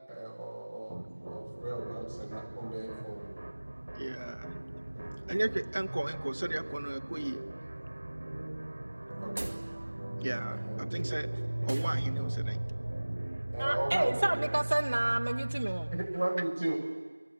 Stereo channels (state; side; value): inverted; both; correlation -1.00